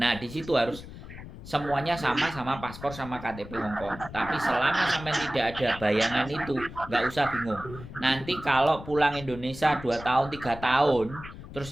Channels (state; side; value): noise; left; rumble, 14 dB below the sound